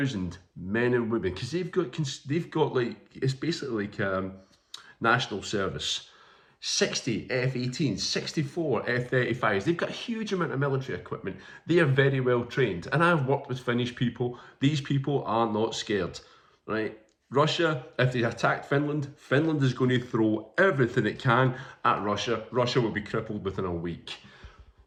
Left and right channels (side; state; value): both; identical; correlation 1.00